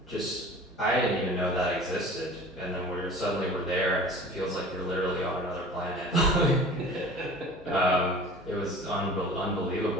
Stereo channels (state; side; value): normal; both; correlation 0.43